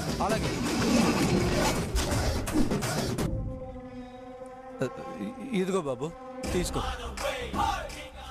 అలాగే. ఇదిగో బాబు తీసుకో.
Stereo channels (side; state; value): both; identical; correlation 1.00